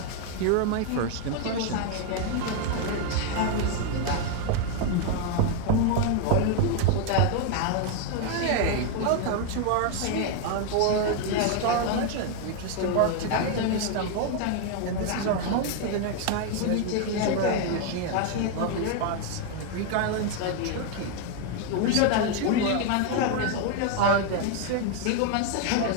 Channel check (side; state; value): both; different; correlation 0.01